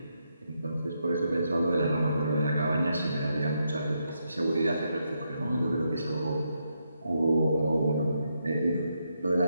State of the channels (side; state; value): both; inverted; correlation -0.81